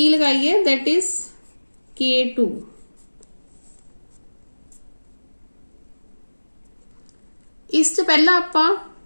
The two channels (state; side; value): inverted; both; correlation -1.00